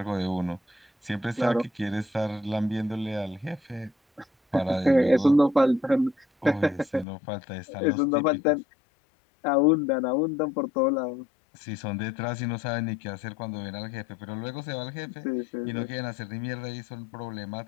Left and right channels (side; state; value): right; drops out; at 7.1 s